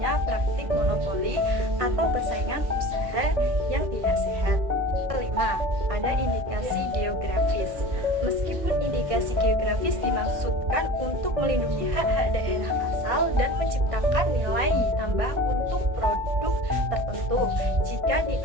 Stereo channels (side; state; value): left; late; 1.6 ms